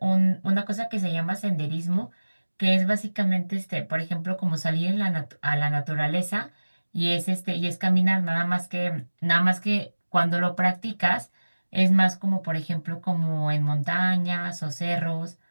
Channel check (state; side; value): inverted; both; correlation -1.00